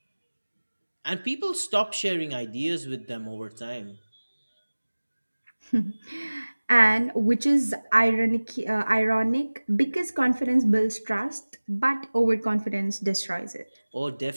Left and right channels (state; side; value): inverted; both; correlation -1.00